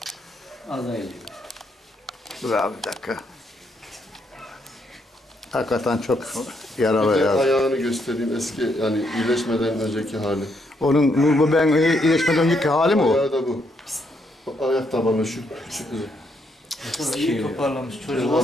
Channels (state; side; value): normal; both; correlation 0.75